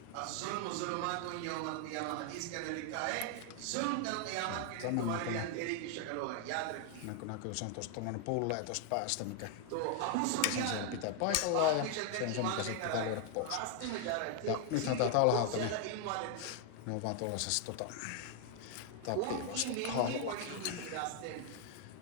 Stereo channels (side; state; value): both; different; correlation 0.00